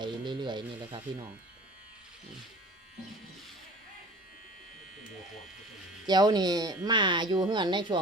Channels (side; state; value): both; normal; correlation 0.42